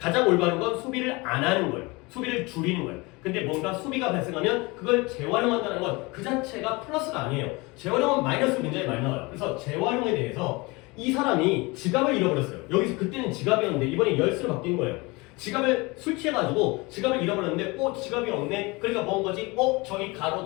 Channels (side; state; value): right; quieter; 25.0 dB